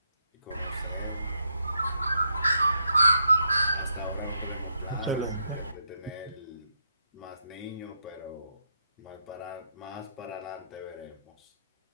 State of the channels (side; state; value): both; inverted; correlation -0.79